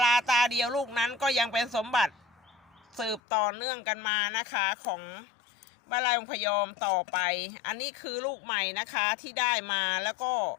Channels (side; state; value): right; drops out; at 3.2 s